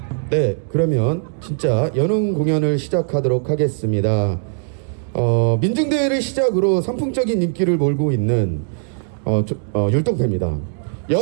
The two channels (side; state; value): left; silent; digital silence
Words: 네, 그러면 진짜 연흥 공연을 시작하도록 하겠습니다. 민중대회를 시작으로 선풍적인 인기를 몰고 있는 율동대입니다.